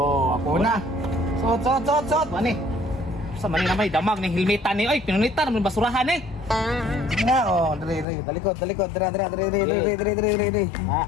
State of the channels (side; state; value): right; drops out; at 8.1 s